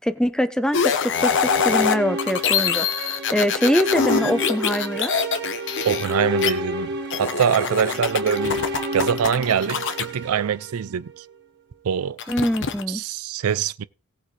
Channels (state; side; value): normal; both; correlation 0.16